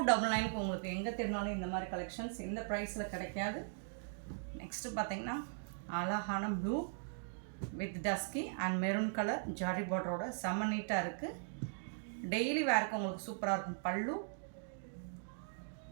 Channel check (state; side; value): silent; left; digital silence